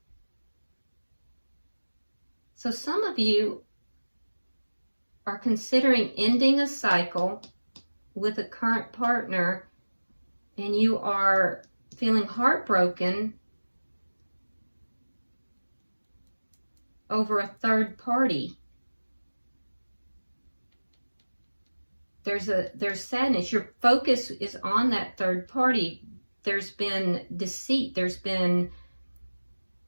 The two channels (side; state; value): both; inverted; correlation -1.00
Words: So some of you are considering ending a cycle with a current partner, and you are feeling heartbroken over a third party. There's sadness. Your focus is on that third party. There's been deceit. There's been